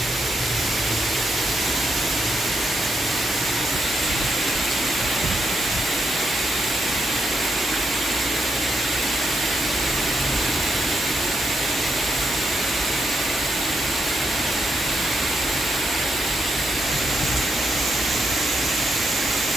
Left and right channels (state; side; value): normal; both; correlation 0.81